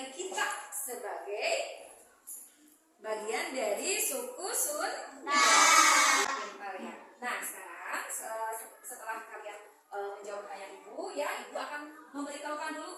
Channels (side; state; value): both; identical; correlation 1.00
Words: kita sebagai bagian dari suku Sunda. Nah, sekarang setelah kalian menjawab pertanyaan Ibu, ya, Ibu akan memberitahukan